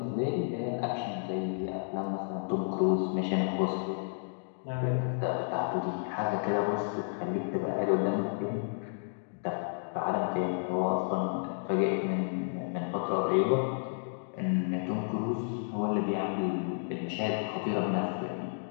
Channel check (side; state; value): right; silent; digital silence